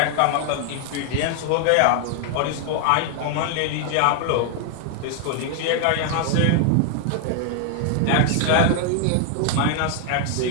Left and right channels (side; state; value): both; different; correlation 0.00